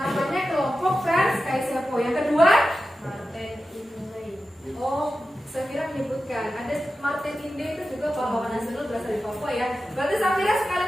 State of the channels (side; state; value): both; normal; correlation 0.93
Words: kelompok Frans Kaisepo. Yang kedua, Martin Inde. Oh, Safira menyebutkan ada Martin Inde, itu juga pahlawan nasional berasal dari Papua ya. Berarti Safira sekali